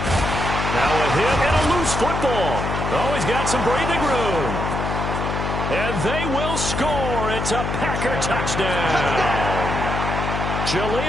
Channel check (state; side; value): noise; left; hum, 2 dB below the sound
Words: Now a hit and a loose football. Oh, he's got some breathing room. And they will score. It's a Packer touchdown.